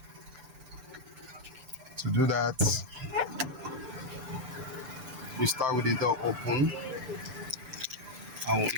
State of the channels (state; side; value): late; left; 6.8 ms